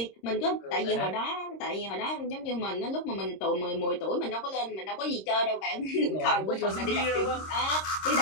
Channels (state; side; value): late; right; 26 ms